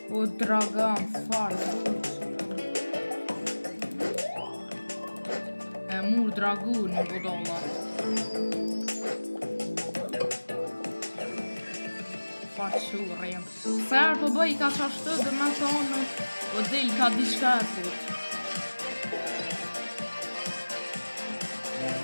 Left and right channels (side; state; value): both; inverted; correlation -1.00